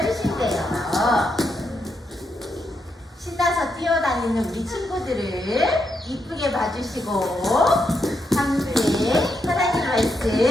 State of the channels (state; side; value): normal; both; correlation 0.81